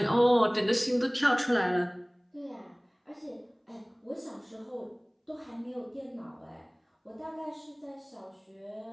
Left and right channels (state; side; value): identical; both; correlation 1.00